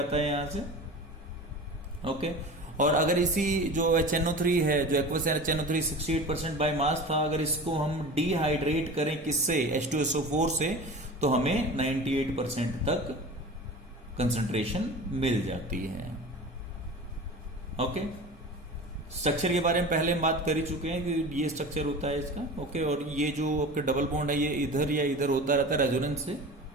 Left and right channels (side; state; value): both; normal; correlation 0.34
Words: है यहां से। ओके, और अगर इसी जो HNO3 है, जो एक्वस HNO3 68% बाय मास था, अगर इसको हम डिहाइड्रेट करें किससे, H2SO4 से, तो हमें 98% तक कंसंट्रेशन मिल जाती है। ओके, स्ट्रक्चर के बारे में पहले हम बात कर ही चुके हैं कि ये स्ट्रक्चर होता है इसका, ओके। और ये जो आपके डबल बॉन्ड है ये इधर या इधर होता रहता है रेजोनेंस से,